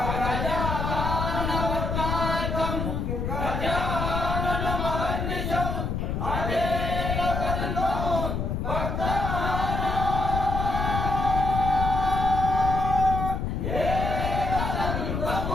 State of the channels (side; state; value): left; noise; rumble, 1 dB below the sound